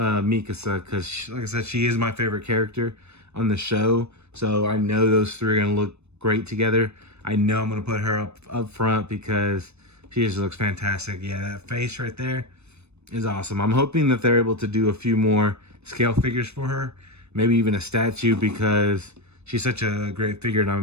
because like I said, she is my favorite character on the show. So I know those three are gonna look great together. I know I'm gonna put her up front because she just looks fantastic. Yeah, that face right there is awesome. I'm hoping that they're able to do a few more scale figures for her, maybe even a statue, because she's such a great figure, and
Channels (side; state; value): left; late; 0.81 ms